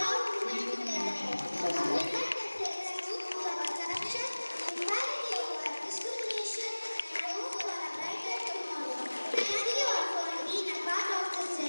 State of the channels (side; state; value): both; inverted; correlation -1.00